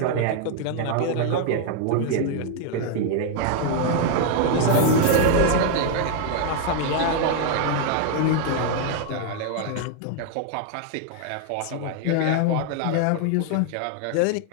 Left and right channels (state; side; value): different; both; correlation 0.00